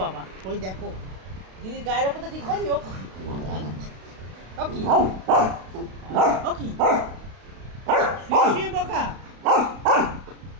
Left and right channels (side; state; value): left; late; 32 ms